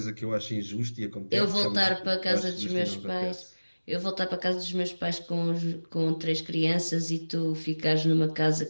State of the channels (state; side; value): inverted; both; correlation -1.00